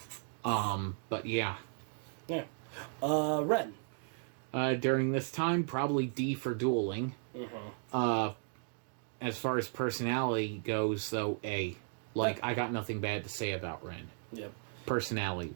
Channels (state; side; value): silent; left; 54 dB below the other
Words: But yeah. Yeah. Ren. During this time, probably D for dueling. Mm-hmm. As far as personality goes, though, A. I got nothing bad to say about Ren. Yep.